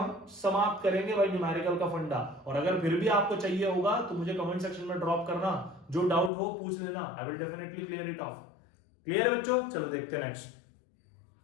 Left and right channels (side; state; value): right; drops out; at 6.3 s